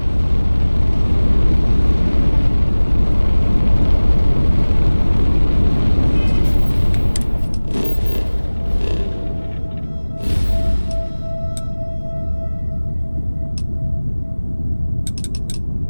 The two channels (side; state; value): both; inverted; correlation -1.00